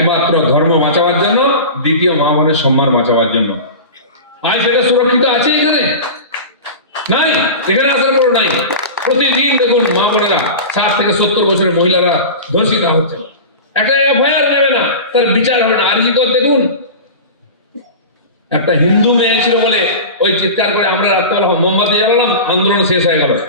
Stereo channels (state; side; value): inverted; both; correlation -0.30